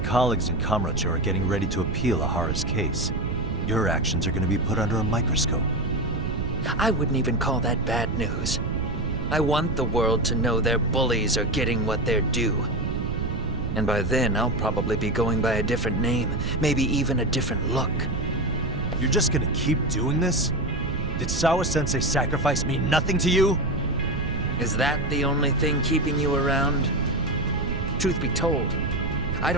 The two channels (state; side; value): noise; right; rumble, 2 dB below the sound